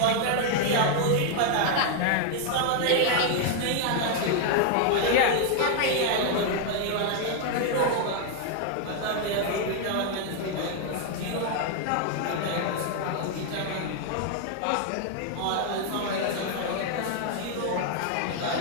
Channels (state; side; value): different; both; correlation 0.00